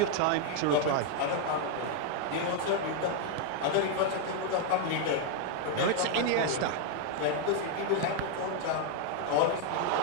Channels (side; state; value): both; different; correlation 0.01